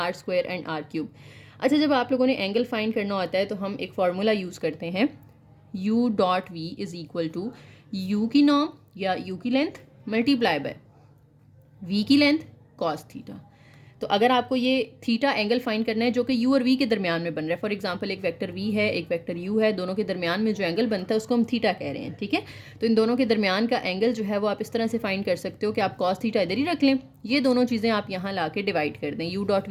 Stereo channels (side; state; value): both; identical; correlation 1.00